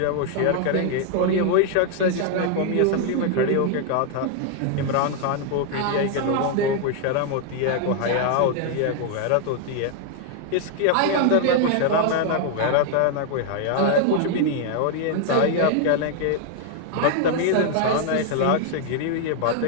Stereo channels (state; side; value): different; both; correlation 0.00